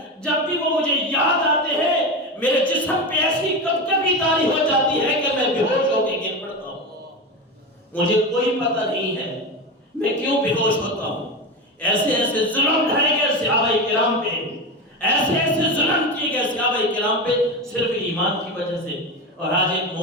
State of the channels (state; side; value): normal; both; correlation 0.20